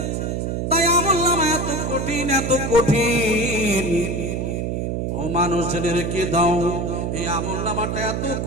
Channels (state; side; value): noise; right; hum, 1 dB below the sound